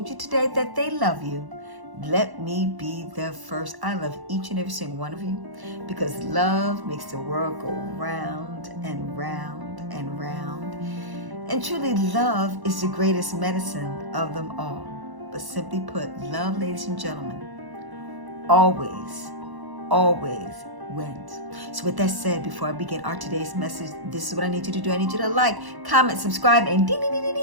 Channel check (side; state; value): left; late; 1.1 ms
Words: you today that they love you, let me be the first. I love each and every single one of you because love makes the world go round and round and round. And truly, love is the greatest medicine of them all. But simply put, love, ladies and gentlemen, always wins. So with that said, before I begin our today's message, this is what I need you to do. I need you to like, comment, subscribe, and ding, ding, ding, ding,